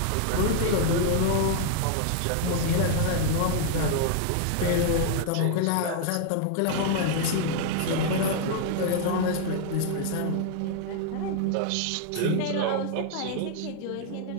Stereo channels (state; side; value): different; both; correlation 0.00